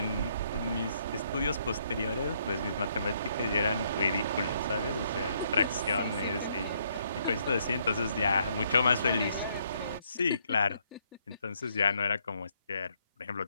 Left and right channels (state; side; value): inverted; both; correlation -0.71